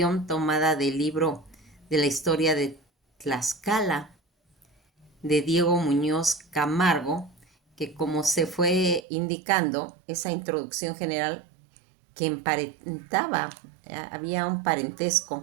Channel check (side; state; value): left; drops out; at 9.1 s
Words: tomada del libro de la historia de Tlaxcala, de Diego Muñoz Camargo, que como se fue indicando, esa introducción general que emparentaba, había un